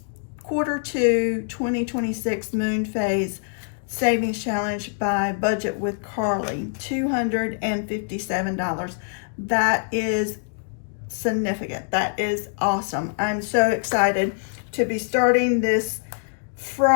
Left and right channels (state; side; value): silent; right; digital silence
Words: 2 2026 moon phase savings challenge by Budget with Carly. $257. That is significant. That is awesome. I'm so excited to be starting this